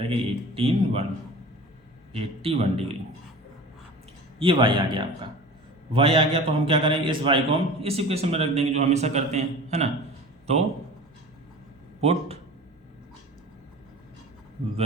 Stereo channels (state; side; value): normal; both; correlation 0.38